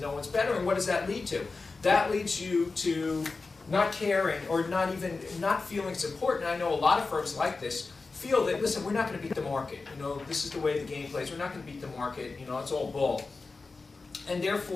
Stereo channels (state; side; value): quieter; right; 4.0 dB